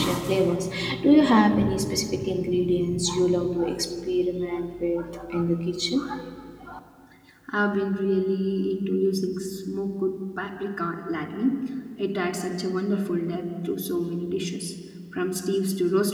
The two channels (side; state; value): both; identical; correlation 1.00